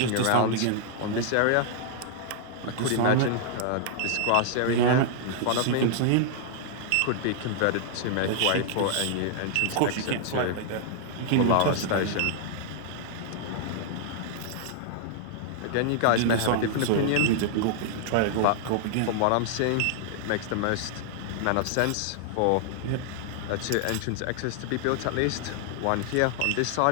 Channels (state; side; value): different; both; correlation -0.01